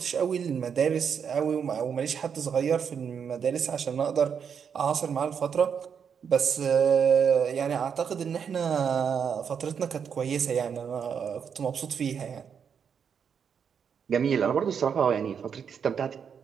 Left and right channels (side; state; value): left; quieter; 7.1 dB